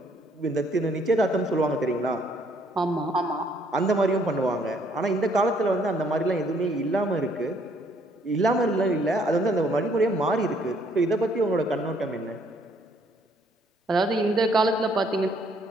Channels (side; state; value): both; normal; correlation 0.66